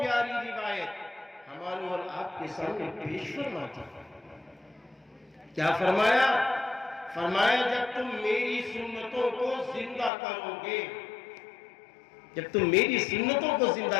روایت ہمارے اور آپ کے سامنے پیش فرمائی۔ کیا فرمایا؟ فرمایا جب تم میری سنتوں کو زندہ کرو گے، جب تم میری سنتوں کو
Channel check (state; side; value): drops out; right; at 10.1 s